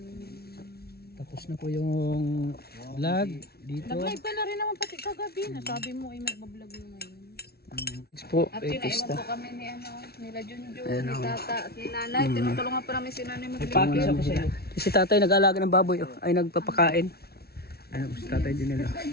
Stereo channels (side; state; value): right; late; 0.45 ms